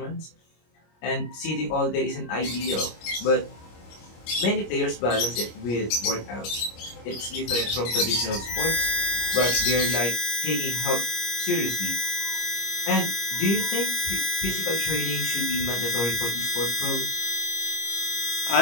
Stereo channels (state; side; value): late; right; 25 ms